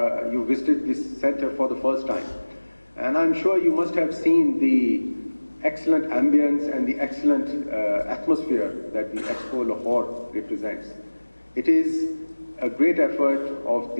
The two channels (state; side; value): inverted; both; correlation -1.00